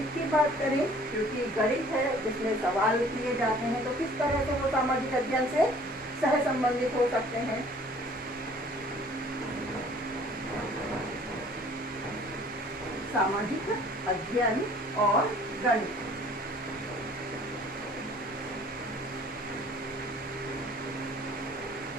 की बात करें, क्योंकि गणित है जिसमें सवाल किए जाते हैं, तो किस तरह से वो सामाजिक अध्ययन से सह संबंधित हो सकते हैं। सामाजिक अध्ययन और गणित,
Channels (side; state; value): both; normal; correlation 0.53